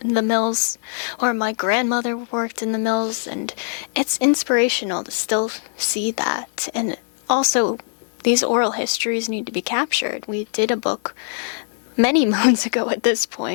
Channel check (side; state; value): right; silent; digital silence